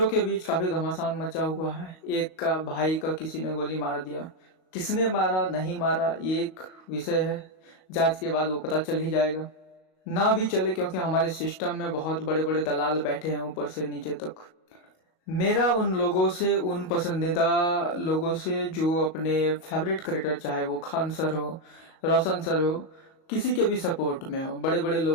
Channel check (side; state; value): right; late; 38 ms